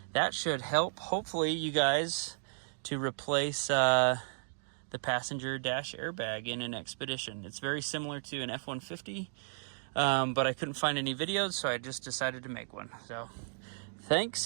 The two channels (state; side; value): silent; left; digital silence